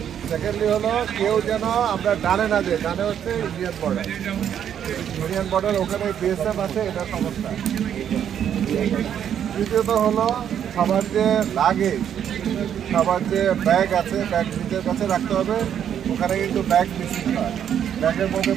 সেকেন্ডলি হলো কেউ যেন আমরা ডানে না যাই, ডানে হচ্ছে ইন্ডিয়ান বর্ডার। ইন্ডিয়ান বর্ডার ওখানে বিএসএফ আছে, এটা সমস্যা। তৃতীয়ত হলো সবার যে লাগেজ, সবার যে ব্যাগ আছে, ব্যাগ নিজের কাছে রাখতে হবে। ওখানে কিন্তু ব্যাগ মিসিং হয়। ব্যাগের মধ্যে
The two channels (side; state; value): left; quieter; 9.2 dB